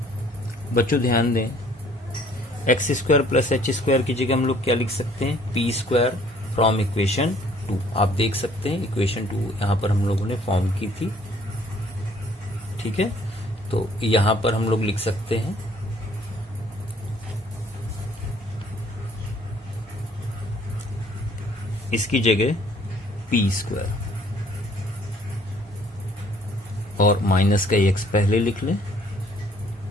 बच्चों ध्यान दें X square plus H square की जगह हम लोग क्या लिख सकते हैं, पी स्क्वायर फ्रॉम इक्वेशन 2 आप देख सकते हैं, इक्वेशन 2 यहाँ पर हम लोगों ने फॉर्म की थी। ठीक है, तो यहाँ पर हम लोग लिख सकते हैं इसकी जगह p² और माइनस का x पहले लिख लें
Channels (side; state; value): both; normal; correlation 0.59